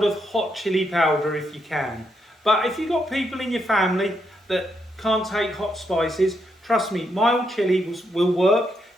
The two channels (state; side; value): normal; both; correlation 0.79